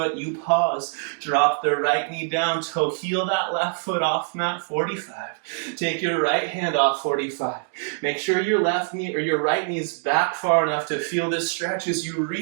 You pause, drop the right knee down, toe heel that left foot off mat 45. Take your right hand off 45. Make sure your left knee or your right knee is back far enough to feel this stretch as you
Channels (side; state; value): left; silent; 62 dB below the other